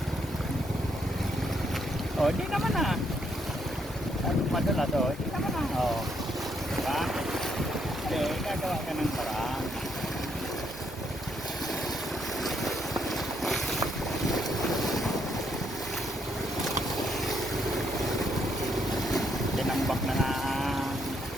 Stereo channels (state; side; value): normal; both; correlation 0.74